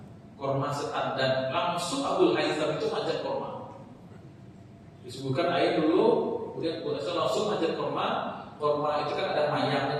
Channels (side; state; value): both; identical; correlation 1.00